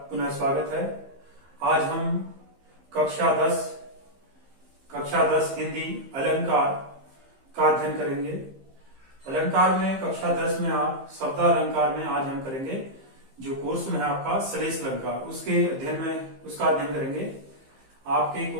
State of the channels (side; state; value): left; late; 15 ms